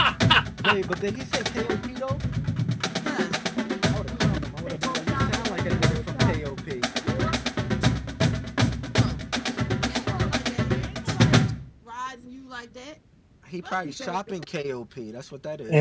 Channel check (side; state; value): both; identical; correlation 1.00